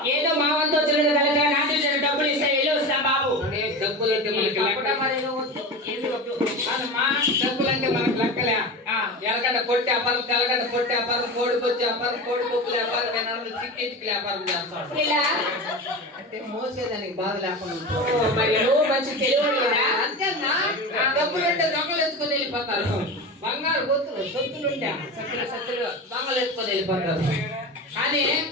ఏదో మా వంతు వచ్చిన కనుక నాట్యం చేసిన డబ్బులు ఇస్తే వెళ్ళి వస్తా బాబు. డబ్బులు అంటే మనకి డబ్బులు అంటే మనకు లెక్కలే. ఎలగడ్డ పొట్టి వ్యాపారం, తెల్లగడ్డ పొట్టి వ్యాపారం, కోడిపొచ్చి వ్యాపారం, కోడిపప్పుల వ్యాపారం, చికెట్కి వ్యాపారం చేస్తాడు. ఇలా అంటే మోసేదానికి బాధ లేకుండా మరి నువ్వు మంచి తెలివి కదా. అంతేనా? డబ్బులు ఉంటే దొంగలు ఎత్తుకొని వెళ్ళిపోతారు. బంగారు గొత్తులు సొత్తులుంటే సత్తులు దొంగలు ఎత్తుకొని వెళ్ళిపోతారు. కానీ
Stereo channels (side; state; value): both; normal; correlation 0.27